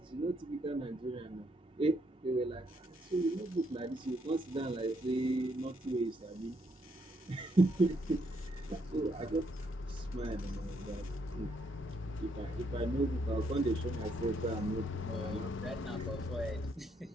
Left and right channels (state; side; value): normal; both; correlation 0.74